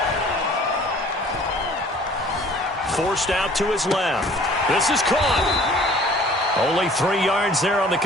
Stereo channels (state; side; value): normal; both; correlation 0.52